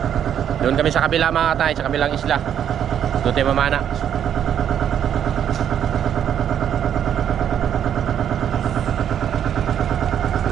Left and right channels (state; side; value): quieter; left; 9.4 dB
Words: Doon kami sa kabila mga tangay, sa kabilang isla. Doon tayo mamana.